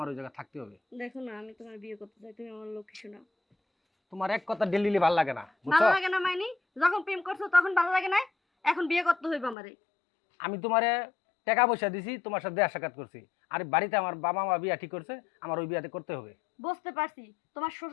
ওই জায়গায় থাকতে হবে। দেখো না, আমি তোমার বিয়ে করতে চাই, তুমি আমার লক্ষ্মী শোনা। তোমার এক কথা ডেলি ভালো লাগে না, ভালো বুঝছো? লাগে না মাইনি? যখন প্রেম করছো তখন ভালো লাগে না, এখন বিয়ে করতে হইবে আমারে। আমি তোমারে টাকা পয়সা দিছি, তোমার সাথে দেখা সাক্ষাৎ করছি। আর বাড়িতে আমার বাবা মা বিয়া ঠিক করছে, আমার ওই বিয়াতে করতে হবে। বুঝতে পারছি, তোমার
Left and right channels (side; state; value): right; drops out; at 9.6 s